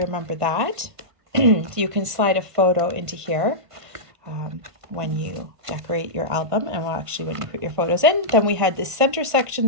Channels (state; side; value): late; left; 1.5 ms